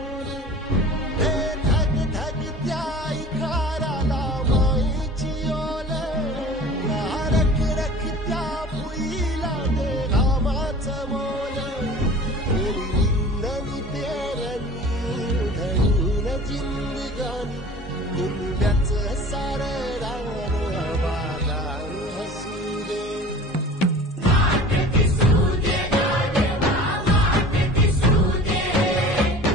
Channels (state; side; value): normal; both; correlation 0.42